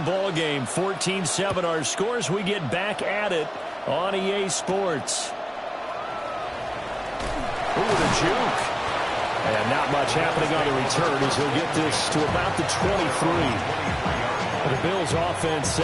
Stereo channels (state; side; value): identical; both; correlation 1.00